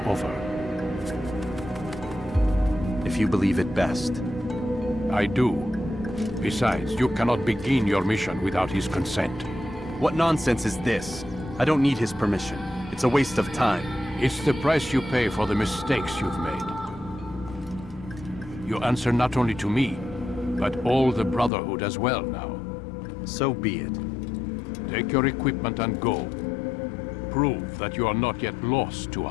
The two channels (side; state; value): right; drops out; at 21.5 s